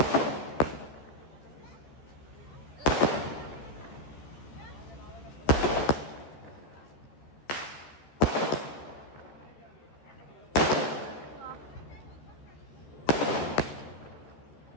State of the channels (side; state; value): right; late; 13 ms